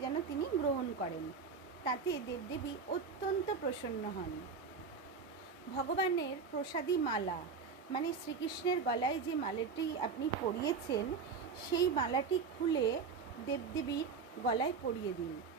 যেন তিনি গ্রহণ করেন। তাতে দেবদেবী অত্যন্ত প্রসন্ন হন। ভগবানের প্রসাদী মালা, মানে শ্রীকৃষ্ণের গলায় যে মালাটি আপনি পরিয়েছেন, সেই মালাটি খুলে দেবদেবীর গলায় পরিয়ে দিন।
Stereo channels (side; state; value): left; quieter; 5.3 dB